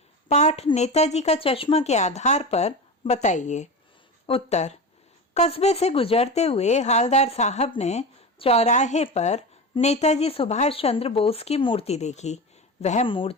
पाठ नेताजी का चश्मा के आधार पर बताइए। उत्तर, कस्बे से गुजरते हुए हवलदार साहब ने चौराहे पर नेताजी सुभाष चंद्र बोस की मूर्ति देखी। वह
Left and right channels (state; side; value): normal; both; correlation 0.25